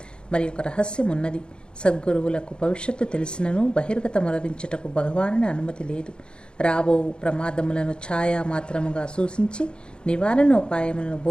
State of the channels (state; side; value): late; right; 0.051 ms